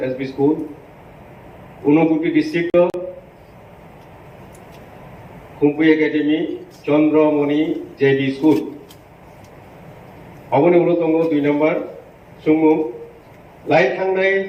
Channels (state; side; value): identical; both; correlation 1.00